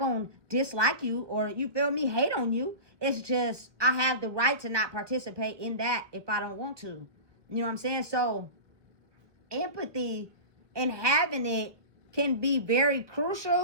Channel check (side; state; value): left; late; 1.3 ms